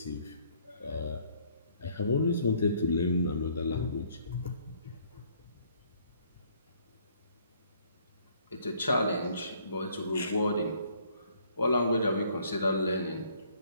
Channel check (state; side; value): inverted; both; correlation -0.62